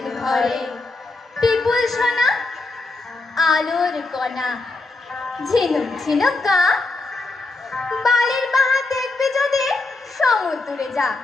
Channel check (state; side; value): quieter; right; 3.4 dB